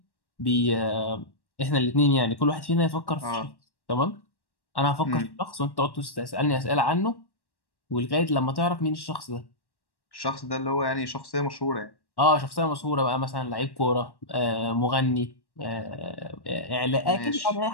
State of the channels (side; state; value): right; late; 1.1 ms